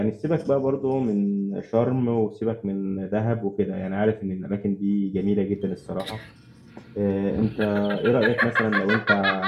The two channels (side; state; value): both; identical; correlation 1.00